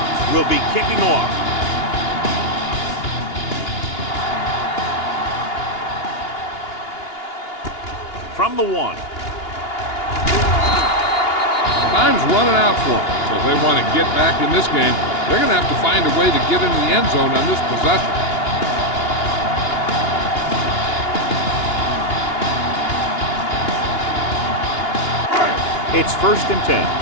will be kicking off. From the 1. Time's running out for them, so if they want to get back in this game, they're going to have to find a way to get into the end zone on this possession. It's 1st and 10.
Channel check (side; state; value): right; late; 2.8 ms